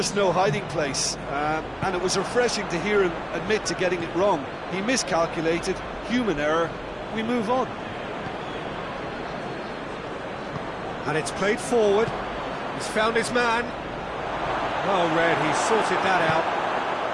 no hiding place, and it was refreshing to hear him admit to getting it wrong. He miscalculated, human error, we move on. And it's played forward, he's found his man. Well read, he's sorted that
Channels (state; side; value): identical; both; correlation 1.00